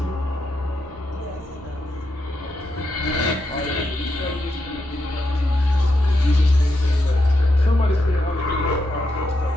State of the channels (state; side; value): normal; both; correlation 0.84